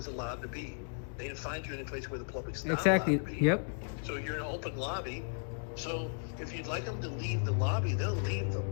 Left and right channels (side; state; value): right; silent; digital silence